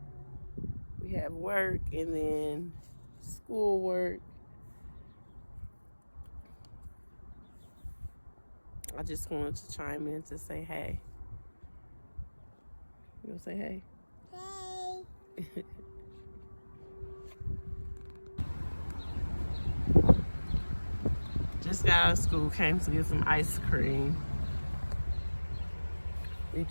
We have work and then school work. I just wanted to chime in to say hey. You gonna say hey? Hey. Just got out of school, came to get some ice cream. We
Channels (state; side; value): inverted; both; correlation -1.00